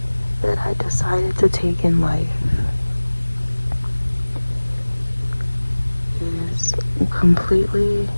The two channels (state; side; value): inverted; both; correlation -1.00